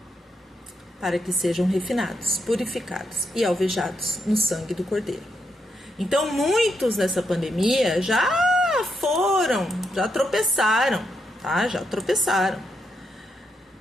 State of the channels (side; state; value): both; normal; correlation 0.81